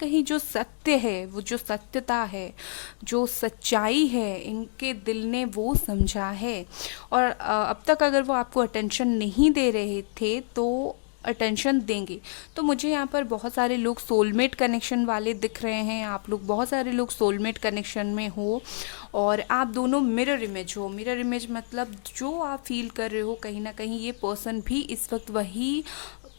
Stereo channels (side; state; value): right; silent; digital silence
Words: जो सत्य है, वो जो सत्यता है, जो सच्चाई है, इनके दिल ने वो समझा है। और अब तक अगर वो आपको अटेंशन नहीं दे रहे थे तो अटेंशन देंगे। तो मुझे यहाँ पर बहुत सारे लोग सोलमेट कनेक्शन वाले दिख रहे हैं, आप लोग बहुत सारे लोग सोलमेट कनेक्शन में हो और आप दोनों मिरर इमेज हो। मिरर इमेज मतलब जो आप फील कर रहे हो, कहीं ना कहीं ये पर्सन भी इस वक्त वही